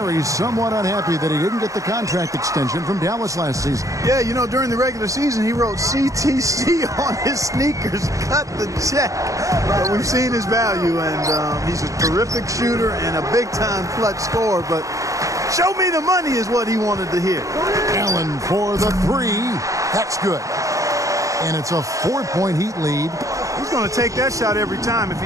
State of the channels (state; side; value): late; left; 0.16 ms